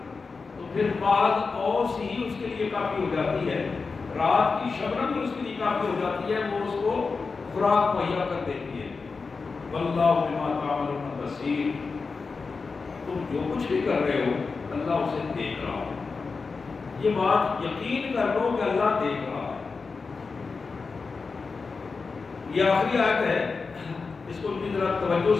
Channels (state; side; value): quieter; right; 4.6 dB